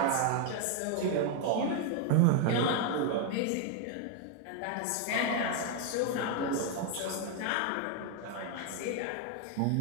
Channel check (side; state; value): both; different; correlation 0.01